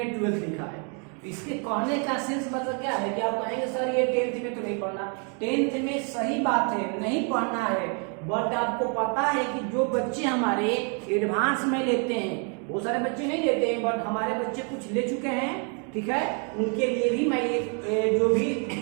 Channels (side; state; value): left; quieter; 38.8 dB